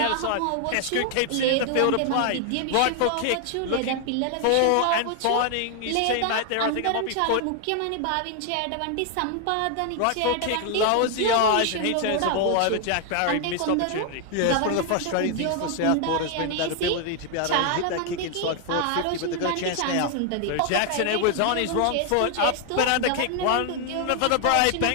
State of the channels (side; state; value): both; different; correlation 0.00